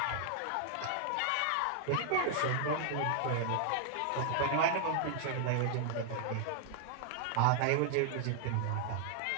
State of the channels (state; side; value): different; both; correlation 0.00